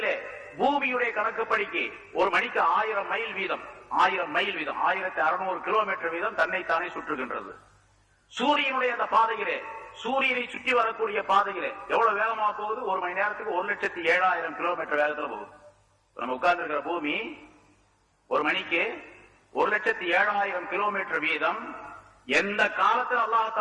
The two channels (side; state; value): both; identical; correlation 1.00